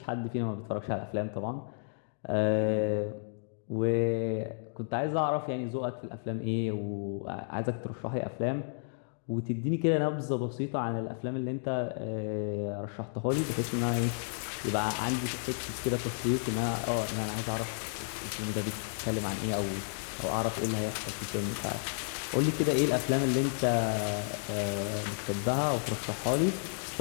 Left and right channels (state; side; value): silent; right; digital silence